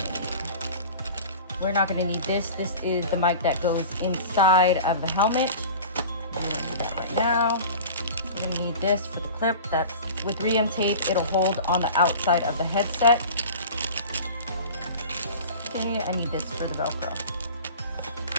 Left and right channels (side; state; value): both; inverted; correlation -0.38